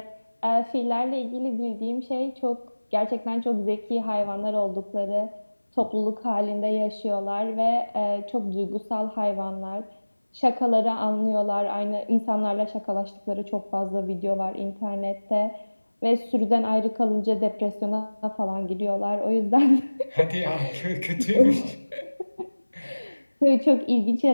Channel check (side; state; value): both; inverted; correlation -1.00